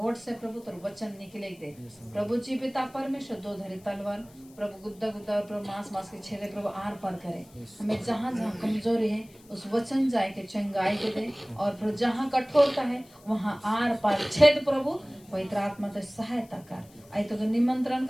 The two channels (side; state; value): left; noise; hiss, 26 dB below the sound